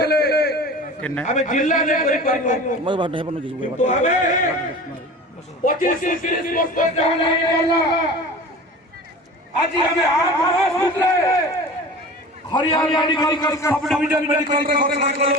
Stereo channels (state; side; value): normal; both; correlation 0.37